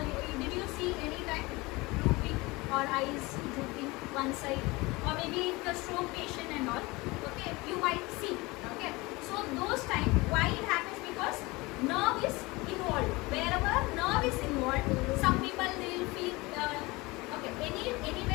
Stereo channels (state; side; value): quieter; right; 23.1 dB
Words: Did you see any time drooping or eyes drooping one side, or maybe the stroke patient and all? Okay, you might see. Okay, so those time why it happens? Because nerve is involved. Wherever nerve is involved, some people they will feel